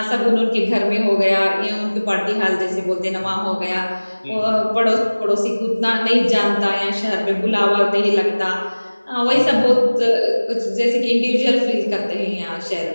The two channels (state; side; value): inverted; both; correlation -1.00